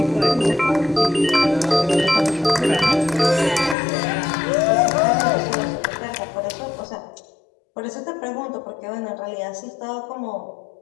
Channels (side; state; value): right; drops out; at 3.8 s